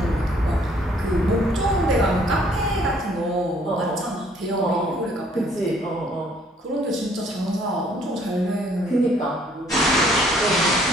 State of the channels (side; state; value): both; normal; correlation 0.62